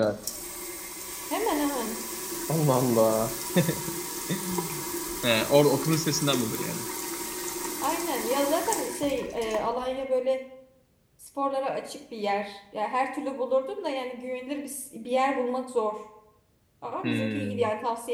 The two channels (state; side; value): identical; both; correlation 1.00